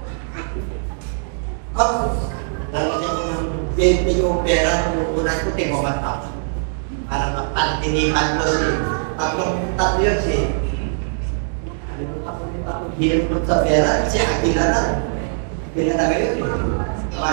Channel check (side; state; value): left; silent; digital silence